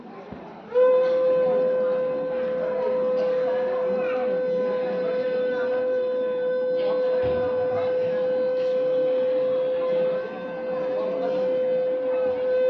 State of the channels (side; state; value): both; identical; correlation 1.00